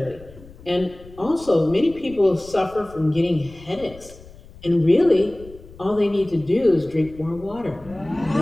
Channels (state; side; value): noise; left; rumble, 20 dB below the sound